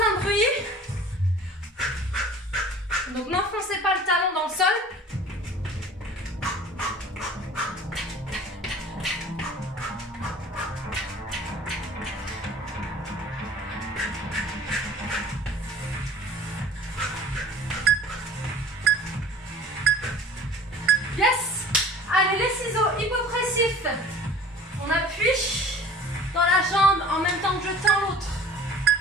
bruit. Donc n'enfoncez pas le talon dans le sol. Yes. Allez, les ciseaux hypopressifs. On appuie dans la jambe en même temps que je tends l'autre.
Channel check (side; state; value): both; normal; correlation 0.46